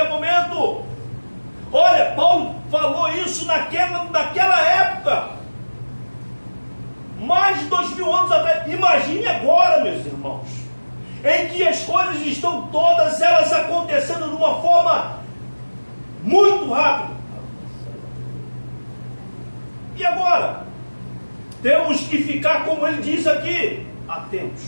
momento. Olha, Paulo falou isso naquela época, mais de 2000 anos atrás. Imagine agora, meus irmãos, em que as coisas estão todas elas acontecendo de uma forma muito rápida. E agora? Temos que ficar, como ele diz aqui, atentos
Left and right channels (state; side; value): inverted; both; correlation -1.00